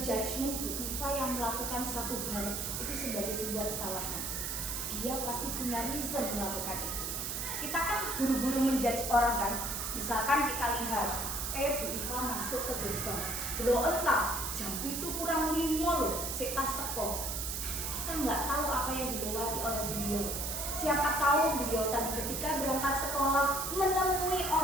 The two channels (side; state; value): right; noise; hiss, 3 dB below the sound